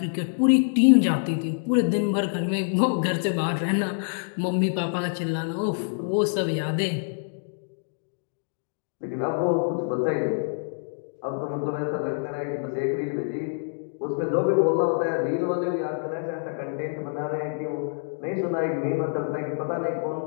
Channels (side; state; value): right; silent; digital silence